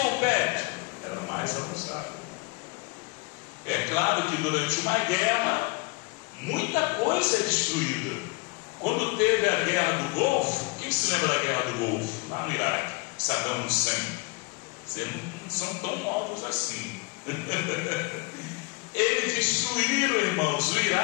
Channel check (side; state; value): right; quieter; 28.3 dB